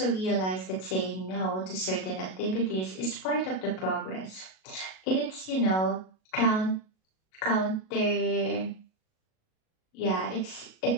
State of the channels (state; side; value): late; right; 37 ms